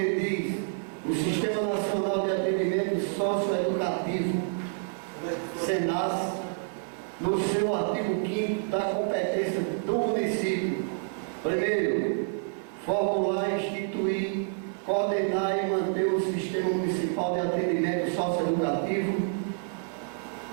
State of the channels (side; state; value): left; silent; 59 dB below the other